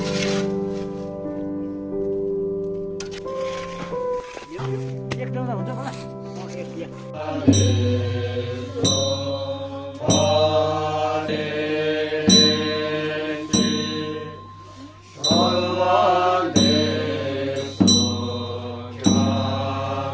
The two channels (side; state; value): both; identical; correlation 1.00